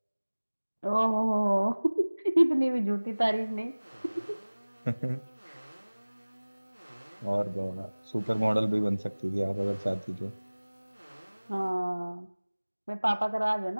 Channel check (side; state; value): both; inverted; correlation -1.00